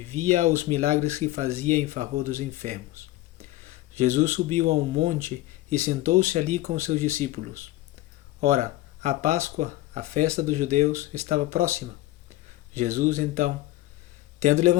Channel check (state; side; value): quieter; right; 16.6 dB